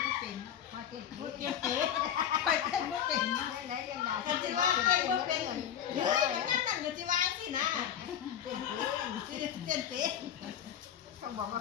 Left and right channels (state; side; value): quieter; right; 9.7 dB